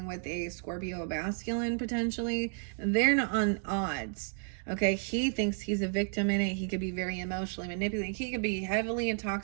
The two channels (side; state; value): left; silent; 56 dB below the other